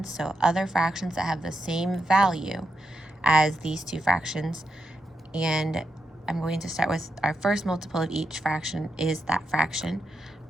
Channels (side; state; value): both; normal; correlation 0.84